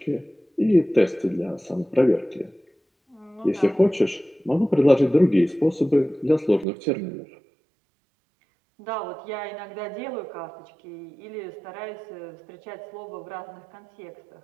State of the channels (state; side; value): drops out; left; at 6.7 s